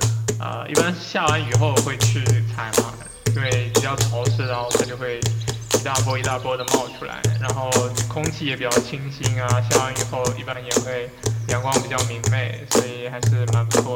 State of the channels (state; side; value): identical; both; correlation 1.00